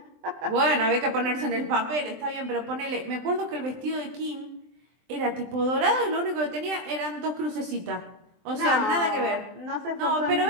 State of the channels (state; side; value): late; left; 23 ms